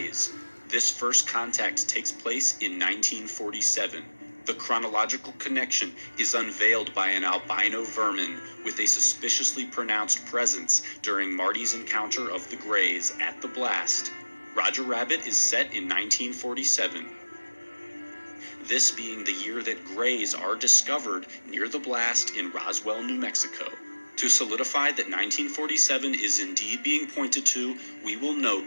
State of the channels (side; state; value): both; inverted; correlation -1.00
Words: This first contact takes place in 1947. The chronological connection is unveiled by an albino vermin with a suspiciously pronounced presence during Marty's encounter of the Greys at the blast. Roger Rabbit is set in 1947. This being the year that Greys are discovered near the blast in Roswell, New Mexico. To solidify that 1947 is indeed being pointed to, we will note